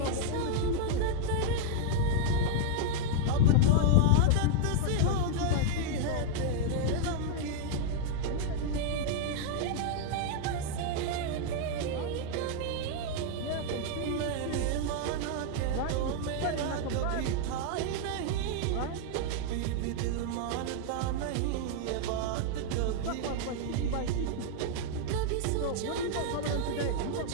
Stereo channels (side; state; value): both; different; correlation 0.00